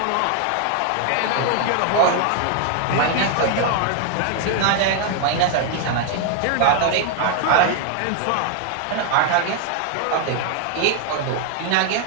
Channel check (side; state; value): both; different; correlation 0.00